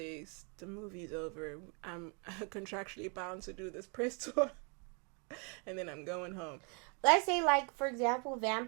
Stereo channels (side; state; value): left; quieter; 35.9 dB